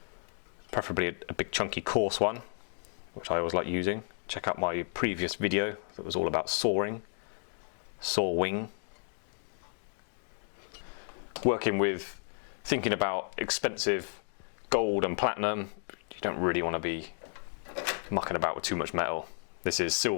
Preferably a big chunky coarse one, which I always like using. Check out my previous video that was all about sawing, sawing. Working with, thinking about expensive gold and platinum, you don't really want to be mucking about with too much metal. This is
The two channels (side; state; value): right; silent; 56 dB below the other